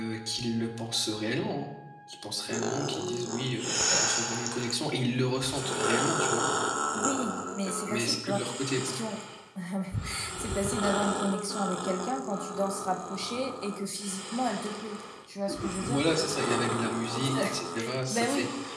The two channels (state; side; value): identical; both; correlation 1.00